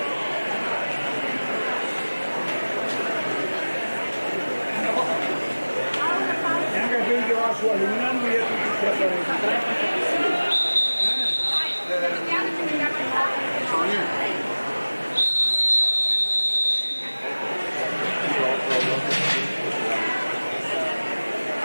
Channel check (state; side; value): inverted; both; correlation -1.00